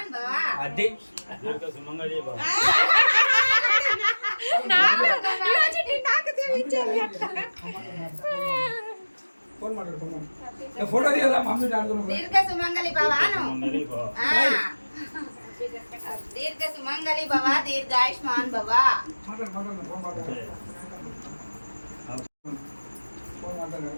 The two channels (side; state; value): both; inverted; correlation -1.00